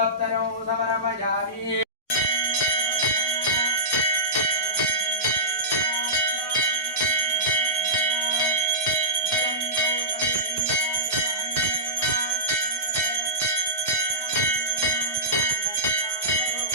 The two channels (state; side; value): normal; both; correlation -0.17